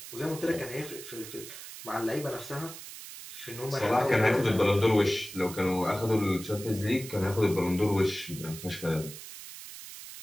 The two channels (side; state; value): right; noise; hiss, 13 dB below the sound